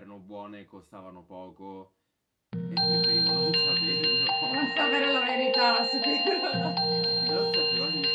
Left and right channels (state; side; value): identical; both; correlation 1.00